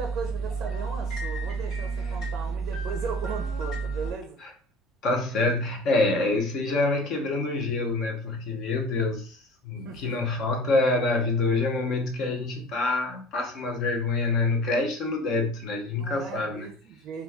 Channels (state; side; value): normal; both; correlation 0.43